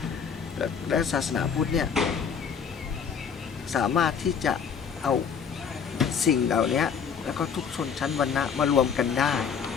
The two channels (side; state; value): right; quieter; 6.8 dB